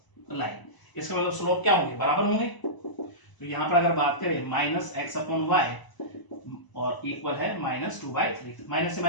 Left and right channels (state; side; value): late; right; 1.0 ms